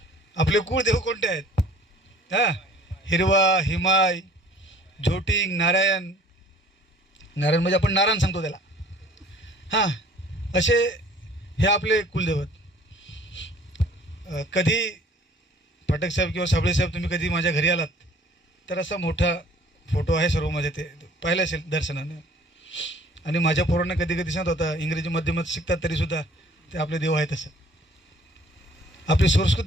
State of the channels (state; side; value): normal; both; correlation 0.53